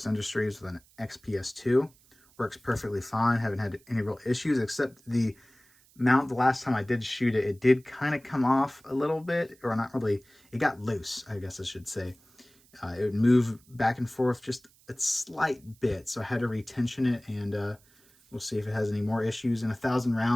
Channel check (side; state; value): right; noise; hiss, 30 dB below the sound